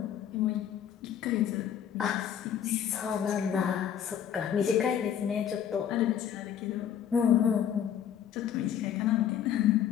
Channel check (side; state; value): right; quieter; 9.3 dB